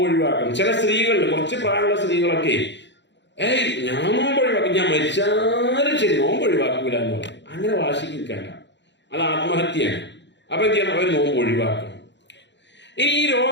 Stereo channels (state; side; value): late; right; 0.52 ms